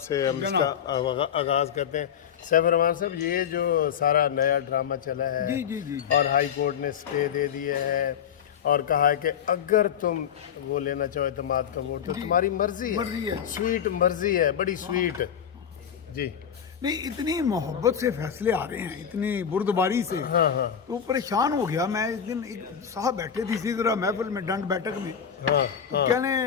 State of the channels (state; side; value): quieter; right; 8.2 dB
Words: हम इसका आगाज़ करते हैं। सैफ रहमान साहब, ये जो सारा नया ड्रामा चला है जी जी जी, और हाई कोर्ट ने स्टे दे दिए है और कहा है कि अगर तुम वो लेना चाहो एतमाद का वोट तो तुम्हारी मर्जी है। स्वीट मर्जी है, बड़ी स्वीट जी। नहीं, इतनी मोहब्बत से फैसले आ रहे हैं, इतनी बुर्दबारी से, तो परेशान हो गया मैं। इस दिन एक साहब बैठे थे इसी तरह महफिल में, डंड बैठक में, तो